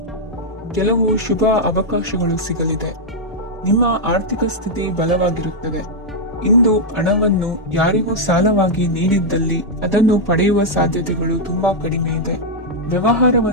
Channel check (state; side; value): normal; both; correlation -0.03